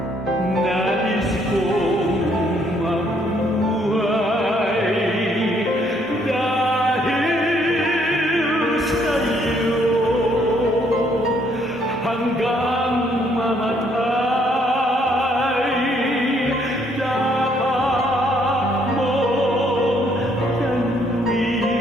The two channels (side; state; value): both; normal; correlation 0.68